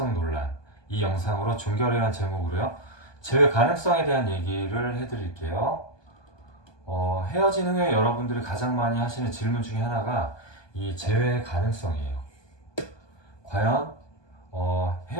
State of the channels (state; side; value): late; right; 1.2 ms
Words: 논란 이 영상으로 종결이라는 제목으로요. 재회 가능성에 대한 얘기를 해드릴게요. 헤어진 후에 여러분들이 가장 많이 하시는 질문 중에 하나가 이 재회 가능성이에요. 과연